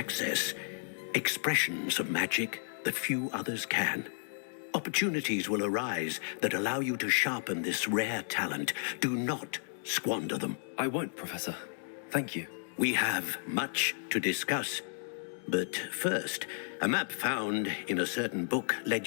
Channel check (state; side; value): silent; right; digital silence